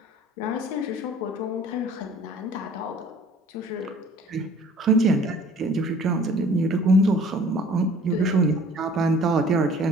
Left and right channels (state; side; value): normal; both; correlation 0.51